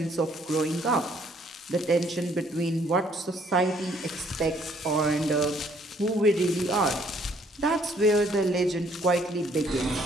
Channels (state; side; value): normal; both; correlation 0.64